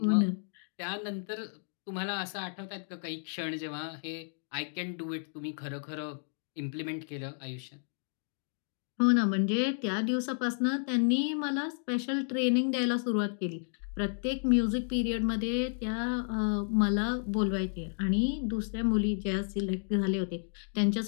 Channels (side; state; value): right; silent; digital silence